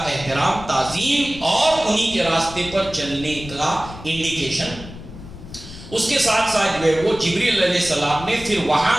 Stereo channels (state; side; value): noise; left; rumble, 15 dB below the sound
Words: احترام، تعظیم اور انہی کے راستے پر چلنے کا انڈیکیشن۔ اس کے ساتھ ساتھ جو ہے وہ جبریل علیہ السلام نے پھر وہاں